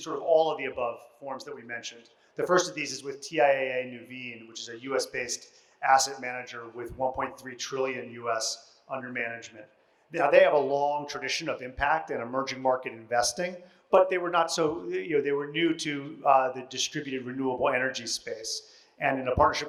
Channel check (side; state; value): both; identical; correlation 1.00